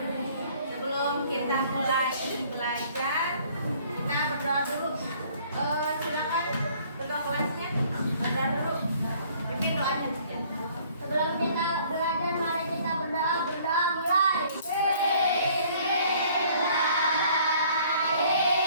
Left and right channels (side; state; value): both; inverted; correlation -0.58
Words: Sebelum kita mulai belajar, kita berdoa dulu. Silakan berdoa kelasnya. Berdoa dulu. Pimpin doanya ya. Sebelum kita belajar, mari kita berdoa mulai.